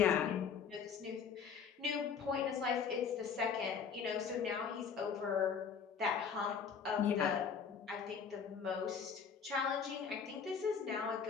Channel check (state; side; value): quieter; right; 6.6 dB